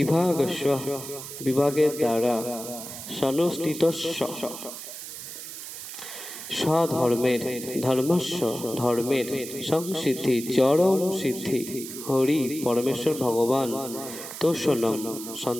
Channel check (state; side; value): noise; right; hiss, 10 dB below the sound